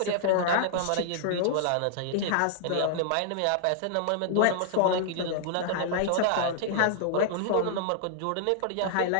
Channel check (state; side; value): different; both; correlation -0.01